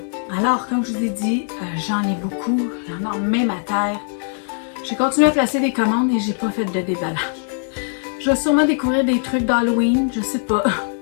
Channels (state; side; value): silent; right; digital silence